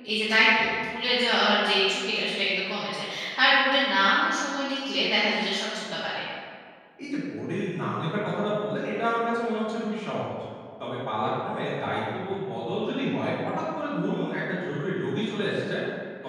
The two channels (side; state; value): both; identical; correlation 1.00